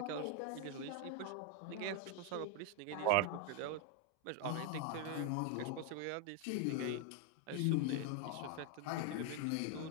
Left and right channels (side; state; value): both; different; correlation 0.00